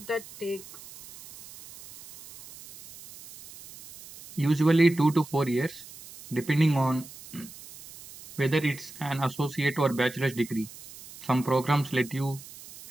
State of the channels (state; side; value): noise; right; hiss, 17 dB below the sound